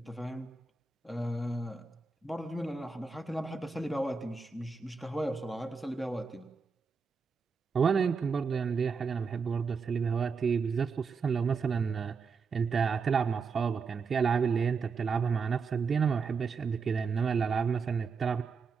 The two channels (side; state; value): left; quieter; 5.2 dB